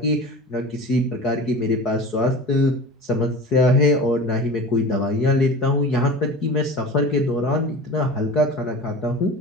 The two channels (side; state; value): both; normal; correlation 0.35